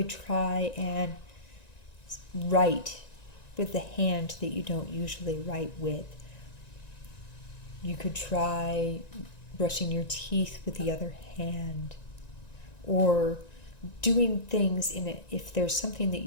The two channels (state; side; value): late; right; 1.9 ms